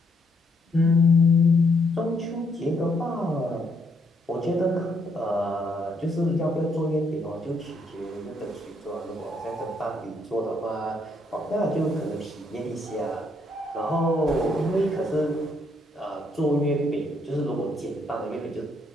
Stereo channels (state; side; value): normal; both; correlation 0.73